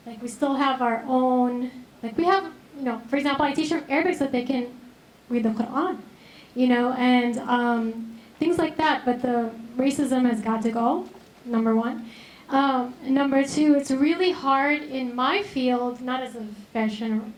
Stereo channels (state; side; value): identical; both; correlation 1.00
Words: Like, we still have our own, like, we have, you know, for example, I teach them Arabic so that they can read the Quran, you know, and things like that, but the racism has got to go, number one. Number two, it's really hard in my field, not as a fashion